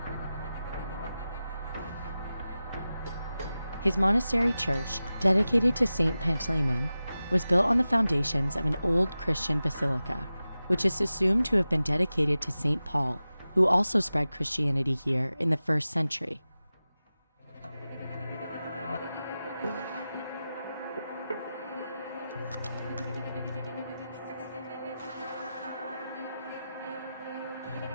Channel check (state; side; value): inverted; both; correlation -0.94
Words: His monastery church, dedicated to Saint Pantaleon, was built on the foundations of an old Christian basilica, which is assumed to have been dedicated to Saint Paul, who also spread Christianity here in the 1st century.